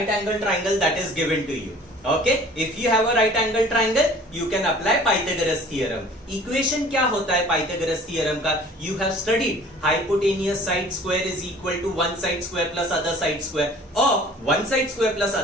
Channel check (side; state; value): both; normal; correlation 0.49